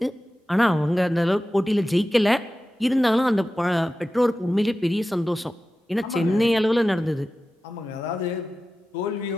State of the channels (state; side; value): normal; both; correlation 0.94